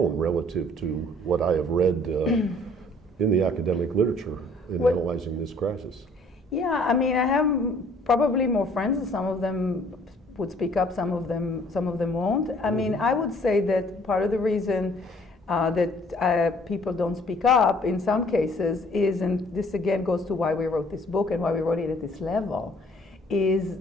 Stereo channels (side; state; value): both; normal; correlation 0.58